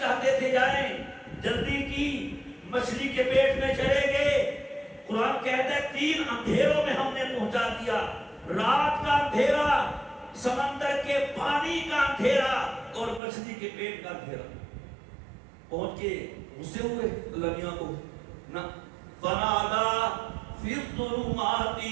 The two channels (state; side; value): drops out; left; at 13.2 s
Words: تھے جائیں، جلدی کی، مچھلی کے پیٹ میں چلے گئے۔ قرآن کہتا ہے 3 اندھیروں میں ہم نے پہنچا دیا، رات کا اندھیرا، سمندر کے پانی کا اندھیرا اور مچھلی کے پیٹ کا اندھیرا۔ پہنچ کے غصے ہوئے اللہ میاں کو نہ، فنادا فی الظلمات